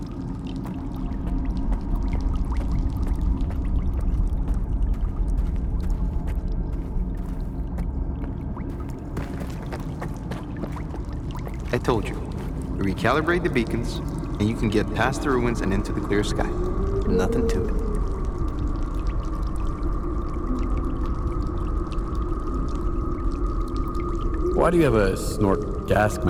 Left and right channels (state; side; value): identical; both; correlation 1.00